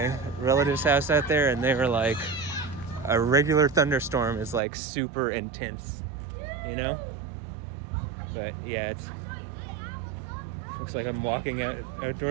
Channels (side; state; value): left; drops out; at 4.6 s